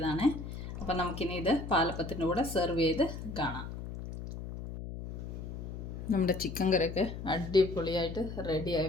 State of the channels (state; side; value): noise; left; hum, 8 dB below the sound